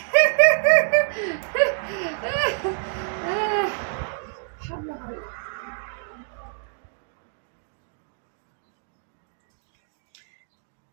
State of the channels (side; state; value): left; silent; digital silence